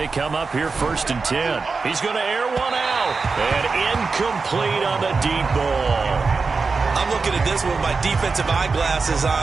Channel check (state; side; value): quieter; left; 4.5 dB